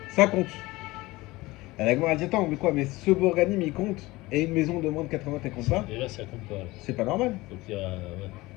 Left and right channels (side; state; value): right; quieter; 20.3 dB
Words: Ça compte. La Gemara dit attends, mais quoi, mais ce bourganim il compte, et une maison de moins de 80 elle compte pas? Et là, ça compte pas. C'est pas normal. Donc, il y a. Ouais.